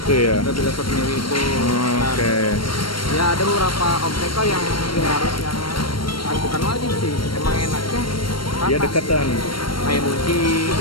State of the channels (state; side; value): late; right; 0.73 ms